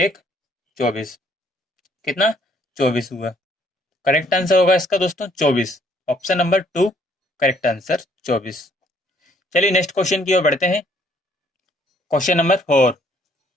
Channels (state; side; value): normal; both; correlation 0.64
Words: 24। कितना? 24 हुआ। करेक्ट आंसर होगा इसका दोस्तों 24। Option number 2 correct answer 24। चलिए नेक्स्ट क्वेश्चन की ओर बढ़ते हैं। Question number 4।